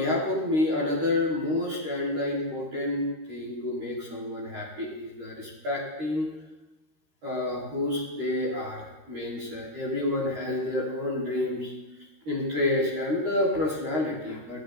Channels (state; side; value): late; left; 13 ms